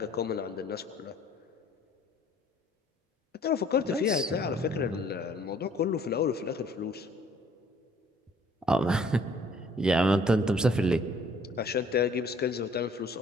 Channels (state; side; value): normal; both; correlation 0.58